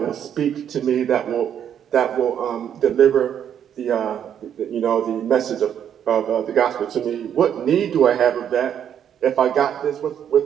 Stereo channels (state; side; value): quieter; left; 9.2 dB